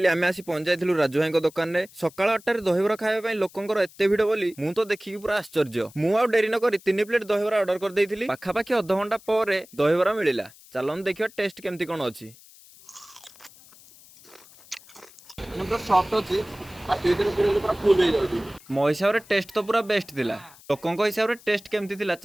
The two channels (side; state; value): left; noise; hiss, 23 dB below the sound